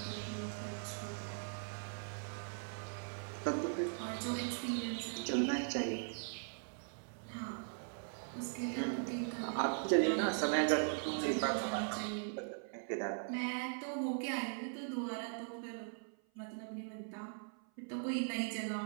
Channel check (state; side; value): silent; left; 51 dB below the other